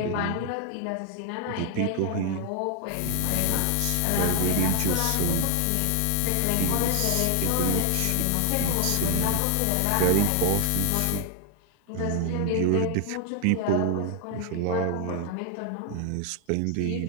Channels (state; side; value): different; both; correlation 0.01